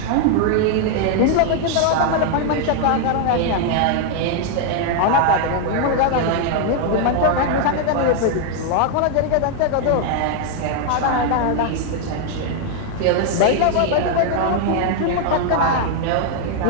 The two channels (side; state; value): both; different; correlation 0.00